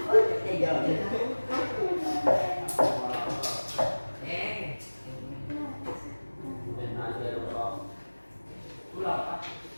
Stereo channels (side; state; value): both; inverted; correlation -1.00